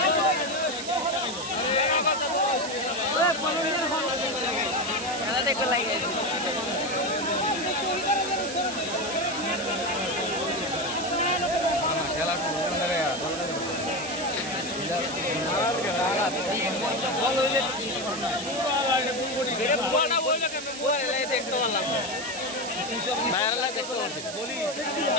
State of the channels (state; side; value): noise; right; hiss, 9 dB below the sound